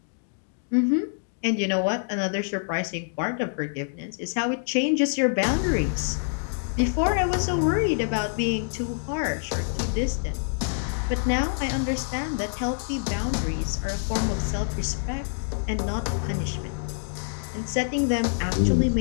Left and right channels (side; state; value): right; silent; digital silence